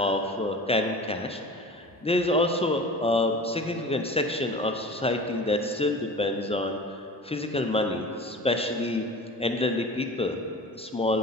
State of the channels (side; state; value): both; normal; correlation 0.37